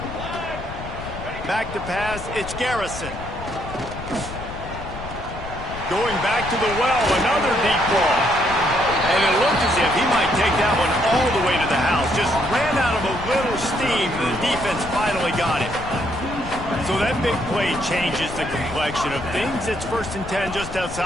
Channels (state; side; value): noise; left; rumble, 10 dB below the sound